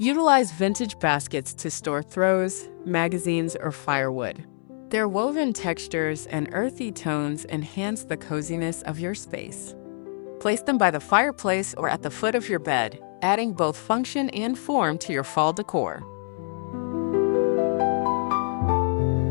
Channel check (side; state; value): right; silent; 61 dB below the other